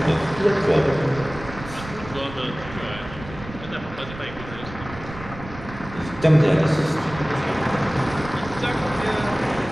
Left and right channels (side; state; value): right; noise; rumble, 14 dB below the sound